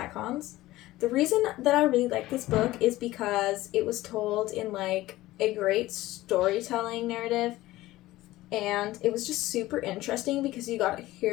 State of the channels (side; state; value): right; quieter; 17.0 dB